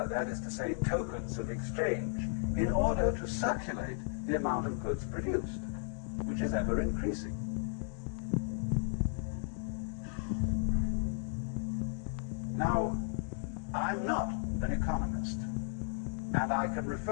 is to say, tokens of exchange, in order to circulate the amount of goods produced, which is ever increasing. Now, I'm not an economist, and I can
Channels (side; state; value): right; silent; 55 dB below the other